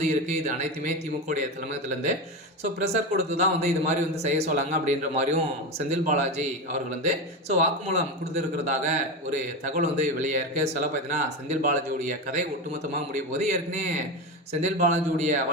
இருக்குது. இது அனைத்துமே திமுகவுடைய தலைமையகத்திலேருந்து ப்ரெஷர் கொடுத்து தான் இது மாதிரி செய்ய சொல்லாங்க அப்படின்ற மாதிரியும் செந்தில் பாலாஜி அவர்கள் வாக்குமூலம் கொடுத்துருக்கிறதாக ஒரு தகவல் வெளியாயிருக்கு. பார்த்தீங்கன்னா செந்தில் பாலாஜியுடைய கதை ஒட்டுமொத்தமாக முடிய போது ஏற்கனவே செந்தில் பாலாஜியுடைய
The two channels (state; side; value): normal; both; correlation 0.18